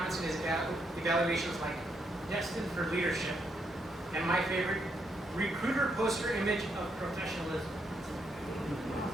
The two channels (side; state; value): both; normal; correlation 0.77